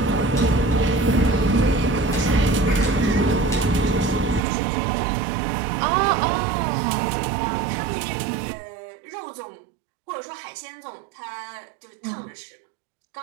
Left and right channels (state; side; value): drops out; left; at 4.4 s